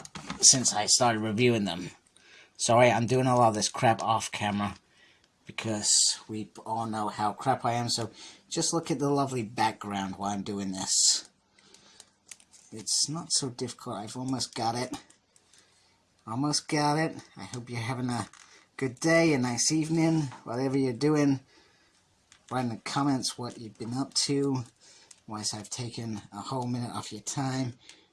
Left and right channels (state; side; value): identical; both; correlation 1.00